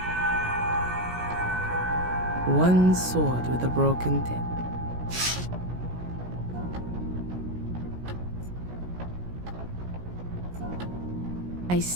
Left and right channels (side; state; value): left; late; 17 ms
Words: One sword with a broken tip. I